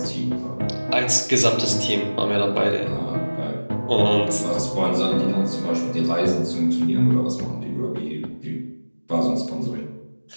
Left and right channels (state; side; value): inverted; both; correlation -1.00